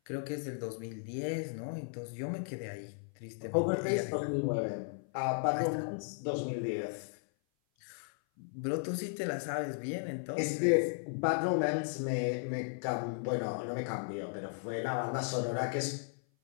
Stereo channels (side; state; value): right; silent; 54 dB below the other